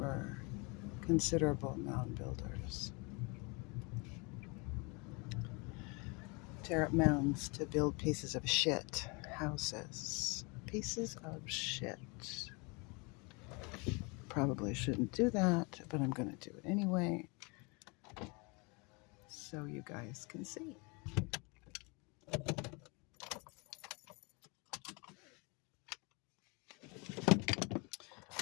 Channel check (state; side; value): quieter; right; 29.7 dB